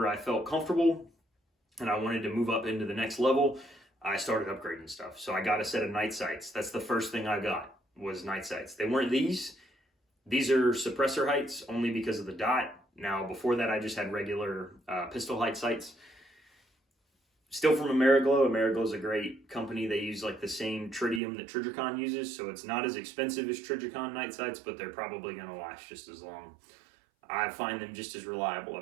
I felt comfortable and I wanted to move up into the next level, I started upgrading stuff. So I got a set of night sights. That's the first thing I got, was night sights. They weren't these. These are suppressor heights only because of the dot. Now, before that, I just had regular pistol height sights. Still from Ameriglow. Ameriglow is a great company. They use like the same tritium that Trijicon uses, so it's not as expensive as Trijicon night sights, but they're probably going to last just as long. I find them just as reliable.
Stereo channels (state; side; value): drops out; left; at 21.2 s